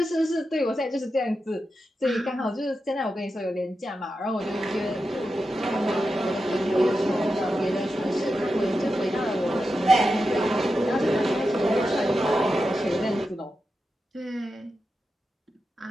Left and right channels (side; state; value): both; normal; correlation 0.89